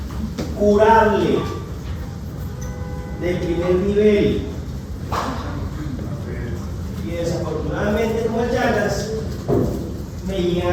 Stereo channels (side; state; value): both; identical; correlation 1.00